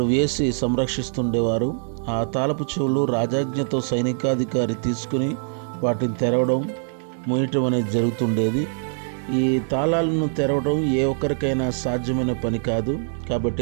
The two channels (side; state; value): left; silent; digital silence